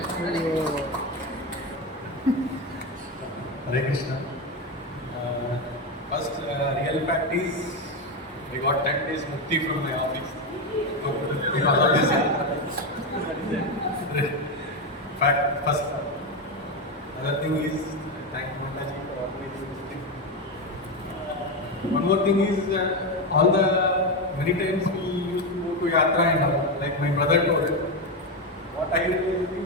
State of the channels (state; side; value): normal; both; correlation 0.12